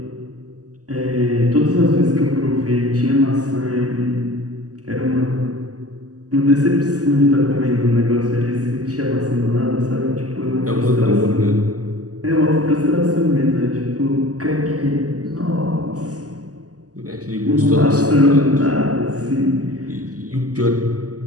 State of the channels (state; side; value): late; left; 0.67 ms